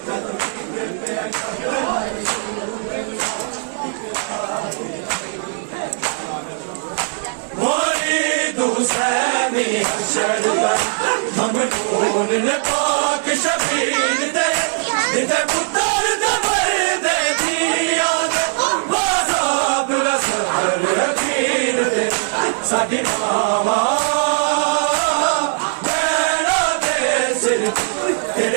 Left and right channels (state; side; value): silent; left; 58 dB below the other